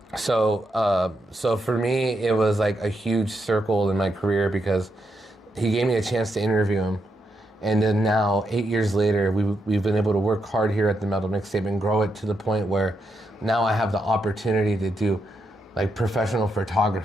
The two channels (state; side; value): normal; both; correlation 0.82